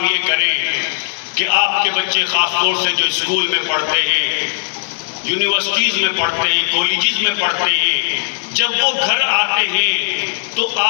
یہ کریں کہ آپ کے بچے خاص طور سے جو اسکول میں پڑھتے ہیں، یونیورسٹیز میں پڑھتے ہیں، کالجز میں پڑھتے ہیں، جب وہ گھر آتے ہیں تو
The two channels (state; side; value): silent; right; digital silence